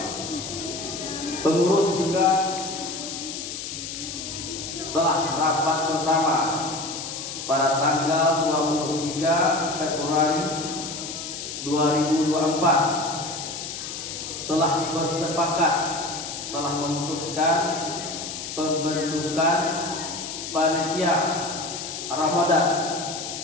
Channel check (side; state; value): left; noise; hiss, 7 dB below the sound